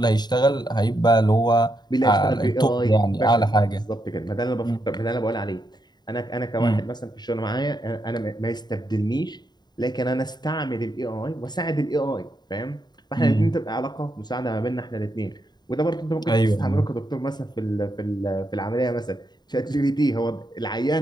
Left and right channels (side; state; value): right; late; 0.20 ms